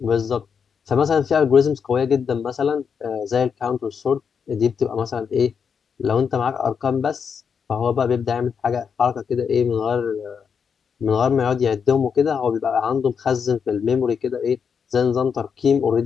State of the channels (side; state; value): right; quieter; 6.6 dB